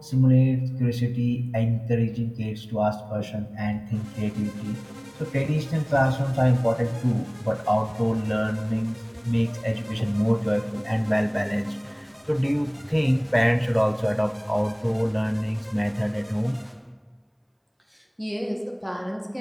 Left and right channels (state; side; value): identical; both; correlation 1.00